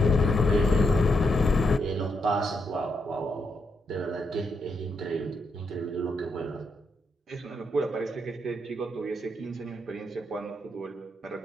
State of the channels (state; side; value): normal; both; correlation 0.80